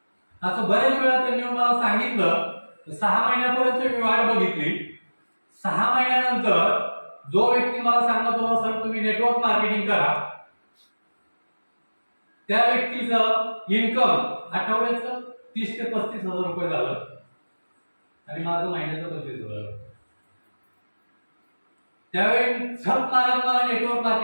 असं बऱ्याच वेळा त्यांनी मला सांगितलं. 6 महिन्यापर्यंत मी वाट बघितली. 6 महिन्यानंतर जो व्यक्ती मला सांगत होता सर तुम्ही नेटवर्क मार्केटिंग करा, त्या व्यक्तीचं इन्कम आठवड्याचं 30 ते 35,000 रुपये झालं आणि माझं महिन्याचं 25,000. त्यावेळी झक मारत मला नेटवर्क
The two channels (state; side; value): inverted; both; correlation -1.00